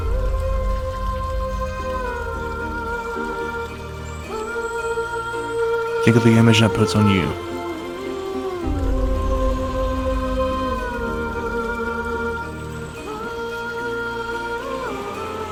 Think of the image that puts on you.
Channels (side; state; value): both; identical; correlation 1.00